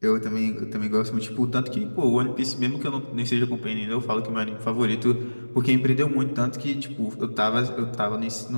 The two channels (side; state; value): both; inverted; correlation -1.00